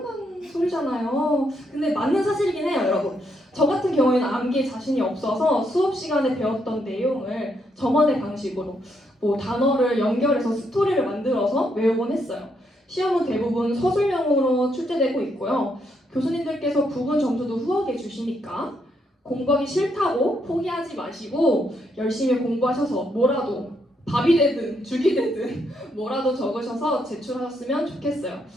소리잖아요. 근데 맞는 사실이긴 해요, 여러분. 저 같은 경우에는 암기에 자신이 없어서 수업 시간에 배웠던 내용을 저만의 방식으로 단어를 연결해서 스토리를 만들어서 외우곤 했어요. 시험은 대부분 서술형으로 출제되고 있고요. 교수님들께서 부분 점수도 후하게 주시니까 공부하기 싫다고 포기하지 마시고 열심히 공부하셔서 뭐라도 밥이 되든 죽이 되든 뭐라도 적으셔서 제출하셨으면 좋겠어요.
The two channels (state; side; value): normal; both; correlation 0.76